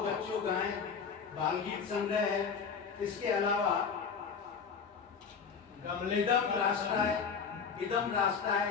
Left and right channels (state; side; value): quieter; right; 6.0 dB